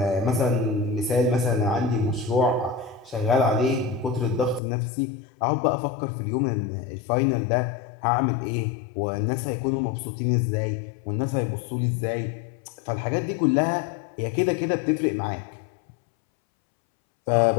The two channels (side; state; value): right; drops out; at 4.6 s